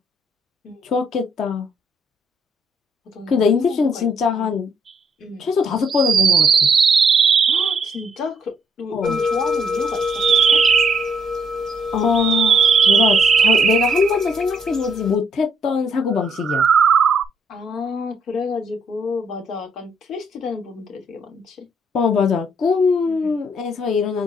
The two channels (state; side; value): normal; both; correlation 0.71